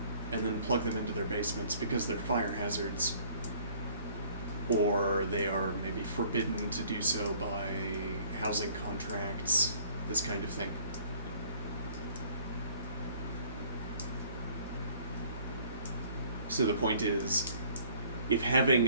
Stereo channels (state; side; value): inverted; both; correlation -0.56